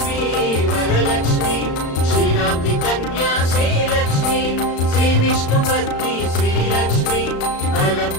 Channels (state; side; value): late; right; 35 ms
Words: वरलक्ष्मी क्षीराब्धि कन्या श्रीलक्ष्मी श्रीविष्णुपत्नी श्रीलक्ष्मी